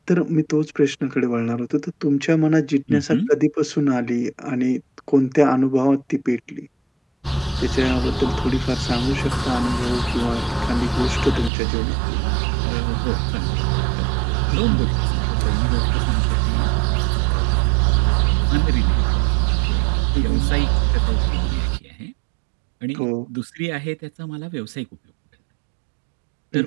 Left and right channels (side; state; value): left; drops out; at 11.5 s